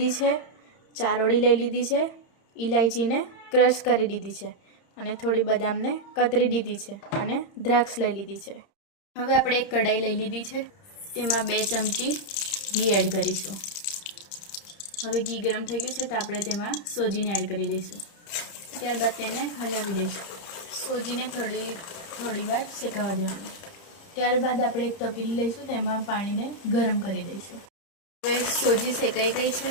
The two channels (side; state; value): right; late; 30 ms